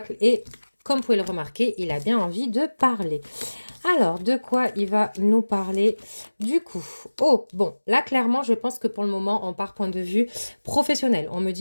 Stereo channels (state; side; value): inverted; both; correlation -1.00